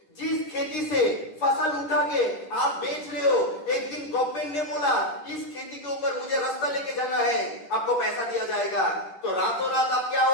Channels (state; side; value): late; right; 10 ms